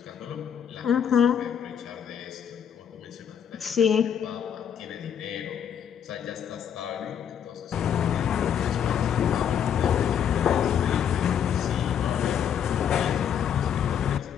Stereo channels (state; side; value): quieter; right; 8.6 dB